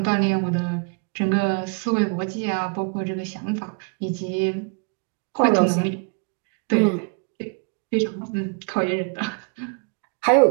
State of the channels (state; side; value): quieter; left; 36.8 dB